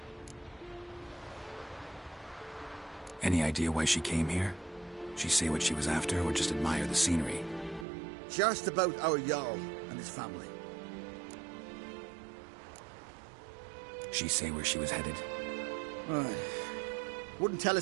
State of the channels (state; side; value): drops out; left; at 7.9 s